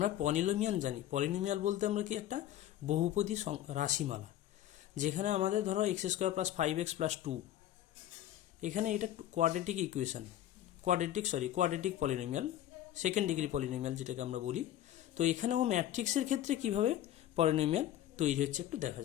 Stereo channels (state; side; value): quieter; right; 12.4 dB